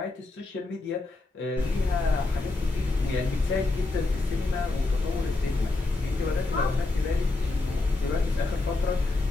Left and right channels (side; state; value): right; quieter; 3.2 dB